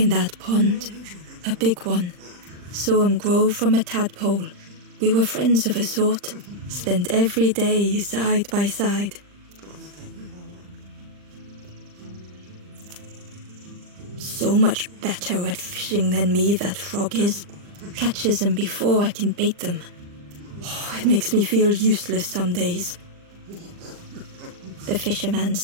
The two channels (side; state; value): left; late; 40 ms